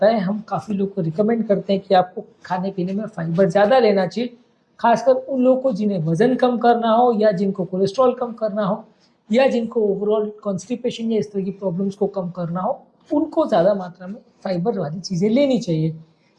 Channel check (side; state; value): both; identical; correlation 1.00